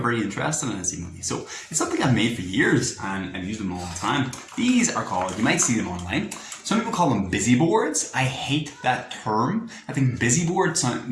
interested in it, seemingly. So it's something I've made for years and I've used them all the time. These are called, you might see them online, some people call them busy boards. I hate that term. I think busy board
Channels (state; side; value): identical; both; correlation 1.00